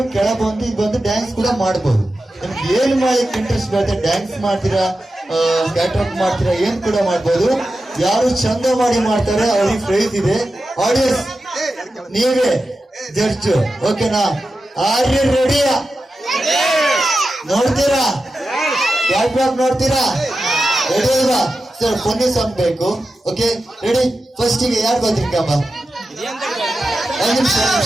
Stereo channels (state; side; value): normal; both; correlation 0.91